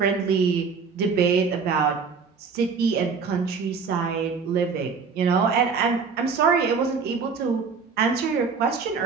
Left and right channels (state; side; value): quieter; left; 5.3 dB